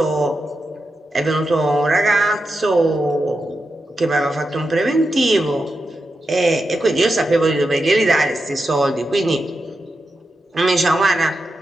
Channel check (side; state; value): both; normal; correlation 0.88